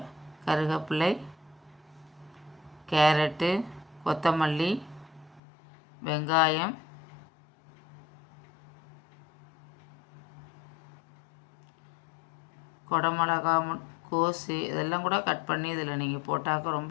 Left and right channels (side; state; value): right; drops out; at 5.4 s